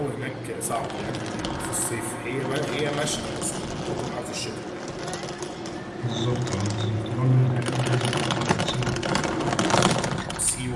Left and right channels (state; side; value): identical; both; correlation 1.00